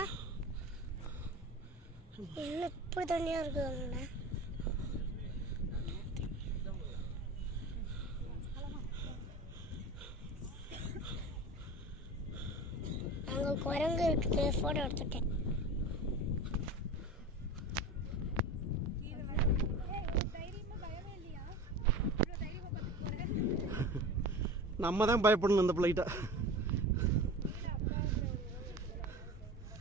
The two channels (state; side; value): normal; both; correlation 0.33